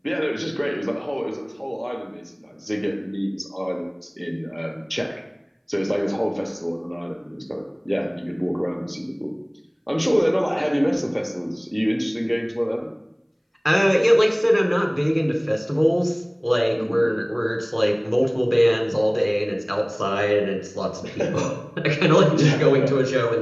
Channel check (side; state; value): both; identical; correlation 1.00